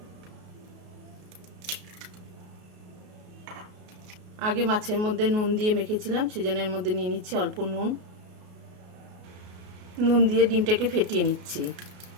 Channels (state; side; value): late; left; 33 ms